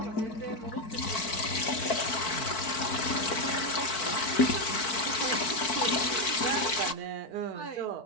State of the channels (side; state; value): right; late; 4.5 ms